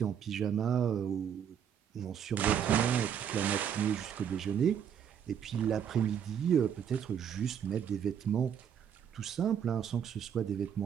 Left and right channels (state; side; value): quieter; left; 8.5 dB